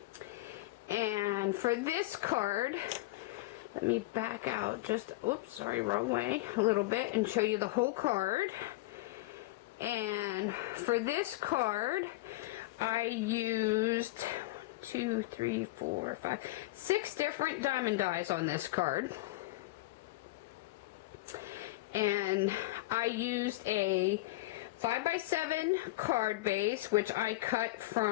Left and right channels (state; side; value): quieter; right; 19.3 dB